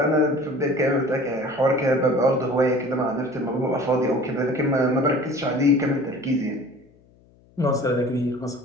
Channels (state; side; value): noise; left; hum, 30 dB below the sound